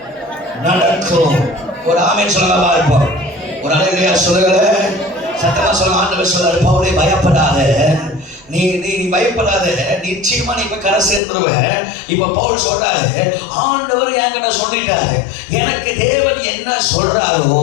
நடக்கும். ஒரு ஆமென் சொல்லுங்க பார்ப்போம். ஒரு அல்லேலூயா சொல்லுங்க. சத்தமா சொல்லுங்க. ஆண்டவர் சொல்றாரு, பவுலே பயப்படாத, நீ பயப்படாத, நிச்சயமா நீ இப்ப கரை சேர்ந்துருவ. இப்ப பவுல் சொல்றாரு, ஆண்டவர் என்கிட்ட சொல்லிட்டாரு, எனக்கு தேவன் என்ன சொல்றாரோ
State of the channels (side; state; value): right; drops out; at 11.2 s